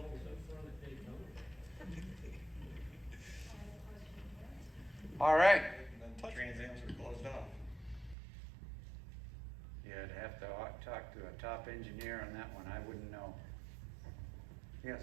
up front at Daytona. All right. Trans Ams were closed off. Yeah, I'd have to talk to a top engineer on that one. I wouldn't know. Yes.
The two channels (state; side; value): drops out; left; at 8.2 s